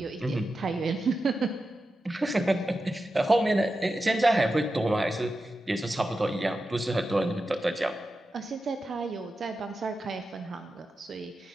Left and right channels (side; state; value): both; normal; correlation 0.91